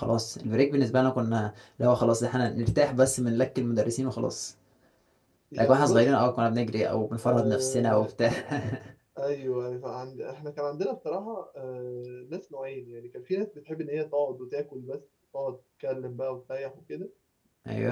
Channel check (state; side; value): identical; both; correlation 1.00